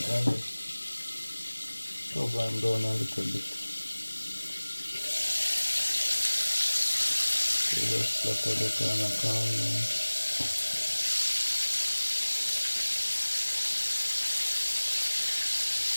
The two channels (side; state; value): both; inverted; correlation -1.00